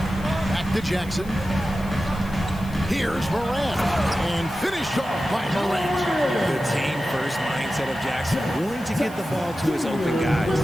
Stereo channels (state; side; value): noise; left; hiss, 21 dB below the sound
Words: Back to Jackson. Here's Morant. And finished off by Morant. The team-first mindset of Jackson, willing to get the ball to his open